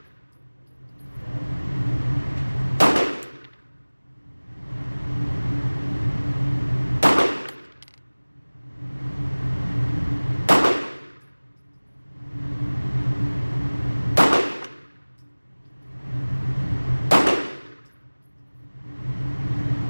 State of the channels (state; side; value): inverted; both; correlation -1.00